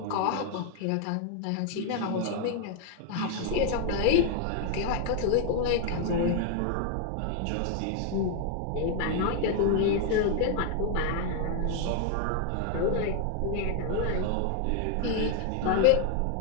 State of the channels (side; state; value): both; different; correlation 0.00